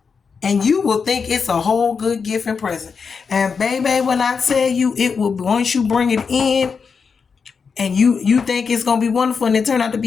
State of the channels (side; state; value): right; quieter; 5.6 dB